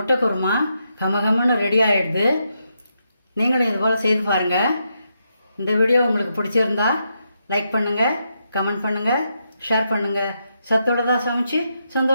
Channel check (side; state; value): both; inverted; correlation -0.82